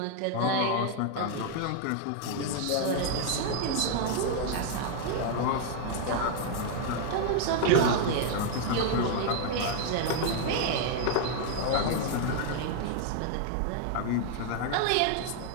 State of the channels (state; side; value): different; both; correlation 0.00